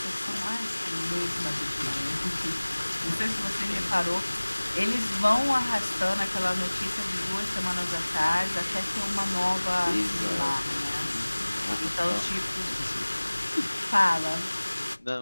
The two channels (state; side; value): inverted; both; correlation -1.00